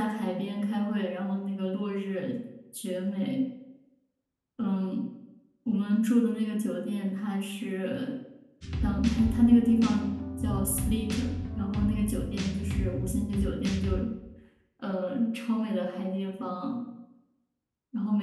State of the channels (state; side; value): identical; both; correlation 1.00